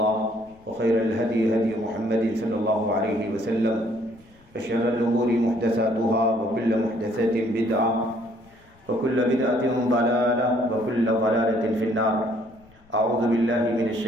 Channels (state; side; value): noise; left; rumble, 29 dB below the sound